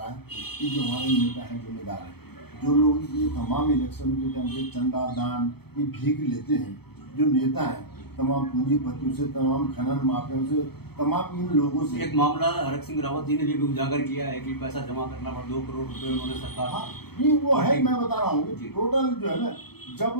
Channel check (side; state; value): right; late; 0.97 ms